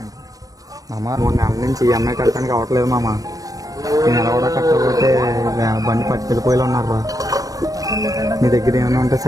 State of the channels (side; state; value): left; late; 0.17 ms